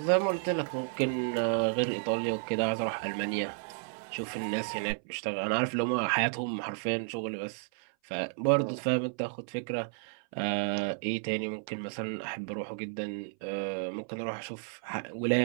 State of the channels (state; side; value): silent; left; 56 dB below the other